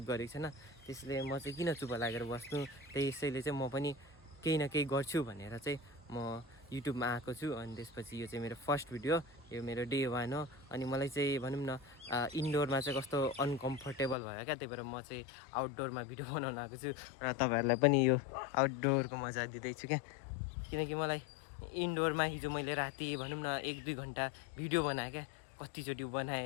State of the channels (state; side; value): drops out; right; at 14.2 s